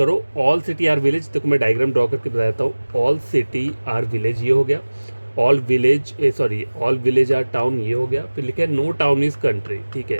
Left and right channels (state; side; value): inverted; both; correlation -1.00